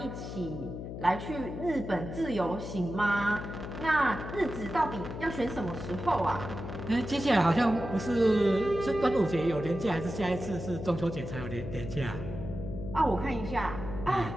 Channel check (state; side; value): noise; left; hum, 8 dB below the sound